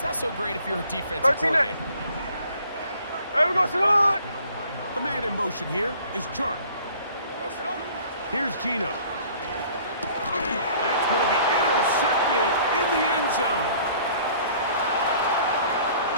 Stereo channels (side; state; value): both; inverted; correlation -0.53